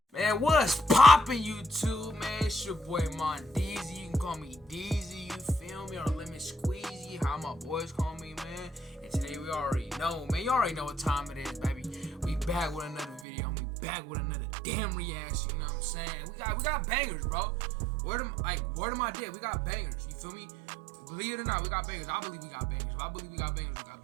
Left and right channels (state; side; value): drops out; left; at 13.2 s